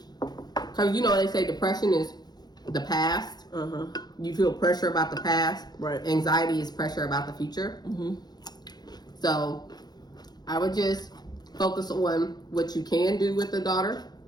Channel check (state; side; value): late; right; 0.20 ms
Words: because they say depression is the past. You feel pressure about the past. Right. Anxiety is pressure about the future. So I would just focus on what you can do with the daughter